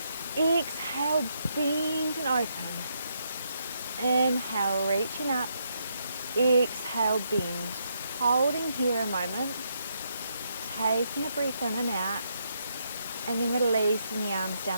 Exhale, bend and open. Inhale, reaching up. Exhale, bend. Holding here a moment. Taking a breath in and out. And then releasing the arms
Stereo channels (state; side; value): inverted; both; correlation -0.78